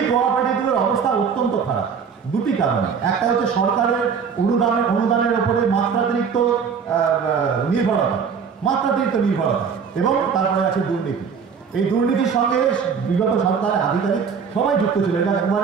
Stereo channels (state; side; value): quieter; left; 6.3 dB